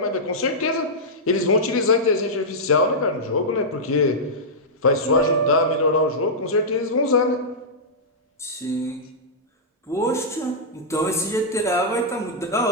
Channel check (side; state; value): both; normal; correlation -0.11